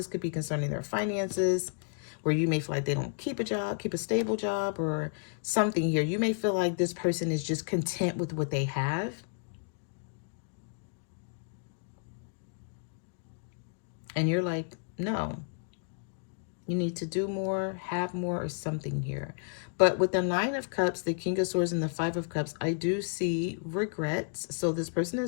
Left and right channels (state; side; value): silent; right; digital silence